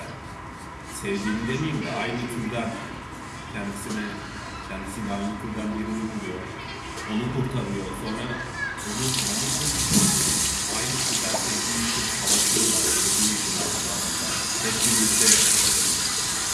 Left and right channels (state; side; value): identical; both; correlation 1.00